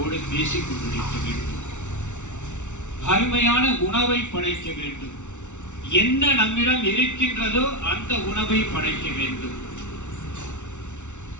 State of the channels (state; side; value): late; right; 0.84 ms